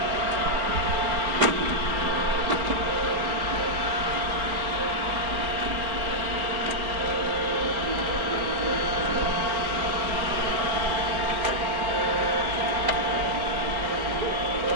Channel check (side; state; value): left; late; 4.3 ms